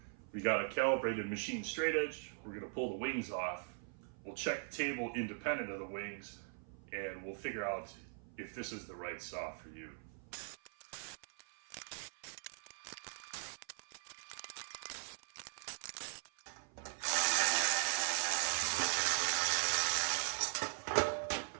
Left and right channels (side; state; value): left; silent; 51 dB below the other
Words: We got a calibrated machine straight edge. We're gonna pull the wings off. We'll check the table independent of the wings, and we'll figure out if this is the right saw for you.